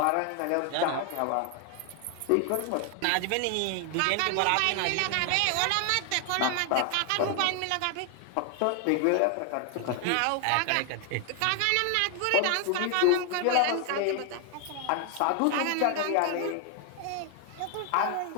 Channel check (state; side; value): different; both; correlation 0.00